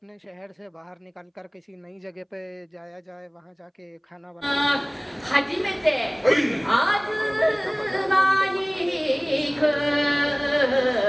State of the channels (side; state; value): both; identical; correlation 1.00